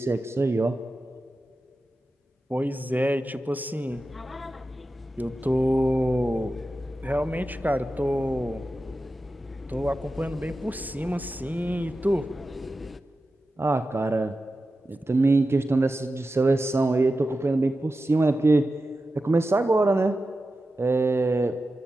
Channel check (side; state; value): both; normal; correlation 0.92